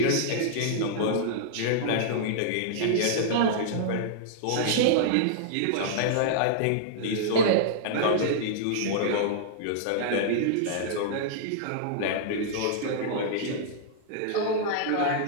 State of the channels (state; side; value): different; both; correlation -0.02